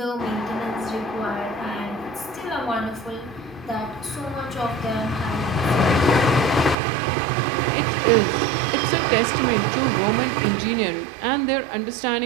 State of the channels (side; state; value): left; drops out; at 6.8 s